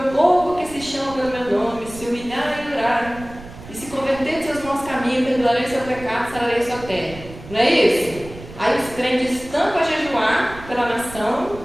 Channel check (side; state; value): right; noise; rumble, 16 dB below the sound